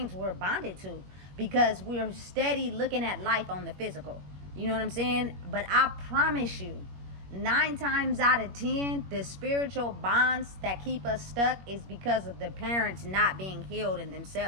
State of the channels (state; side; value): late; left; 21 ms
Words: we're bonded to, because we're steady looking at life on the physical. You know what I'm saying? But I promise you, 9 times out of 10, the spiritual bonds that keep us stuck is because of the parents not being healed in